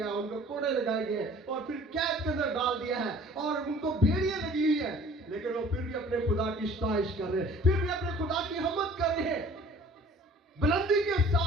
ان کو کوڑے لگائے گئے اور پھر قید کے اندر ڈال دیا ہے اور ان کو بیڑیاں لگی ہوئی ہیں، لیکن وہ پھر بھی اپنے خدا کی ستائش کر رہے ہیں، پھر بھی اپنے خدا کی حمد کر رہے ہیں، بلندی کے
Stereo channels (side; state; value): both; normal; correlation 0.50